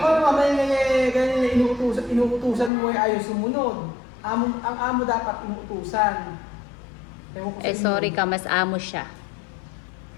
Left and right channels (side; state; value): right; drops out; at 2.7 s